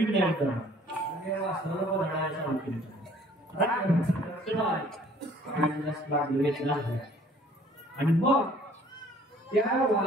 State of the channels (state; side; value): normal; both; correlation 0.56